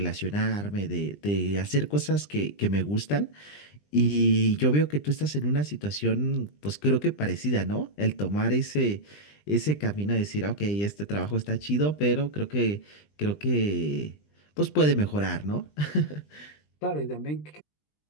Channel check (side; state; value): right; late; 20 ms